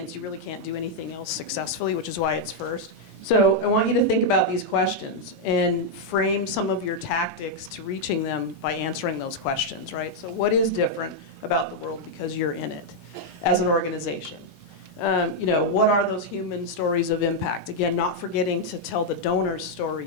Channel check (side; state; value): both; normal; correlation -0.02